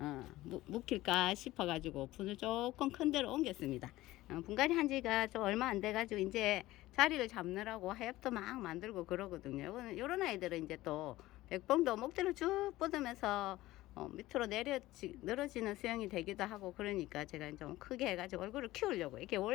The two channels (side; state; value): right; quieter; 17.1 dB